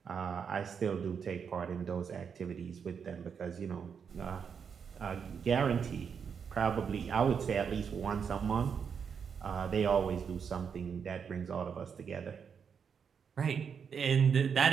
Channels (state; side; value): quieter; left; 6.8 dB